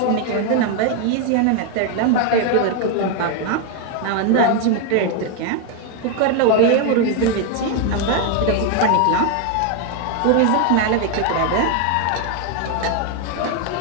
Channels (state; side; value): different; both; correlation 0.01